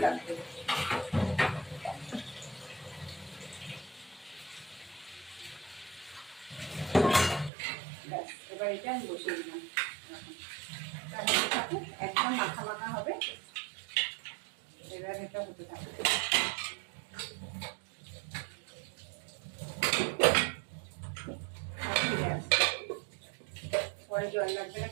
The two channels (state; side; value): drops out; left; at 7.5 s